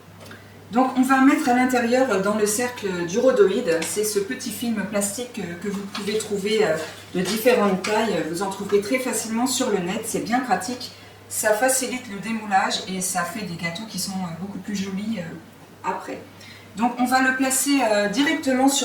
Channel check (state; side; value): identical; both; correlation 1.00